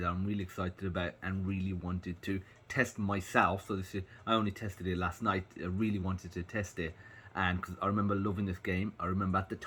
excited about and really wanted to test myself. So I only tested it last night. I really wanted to test it, and because I remember loving this game. I remember at the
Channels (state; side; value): identical; both; correlation 1.00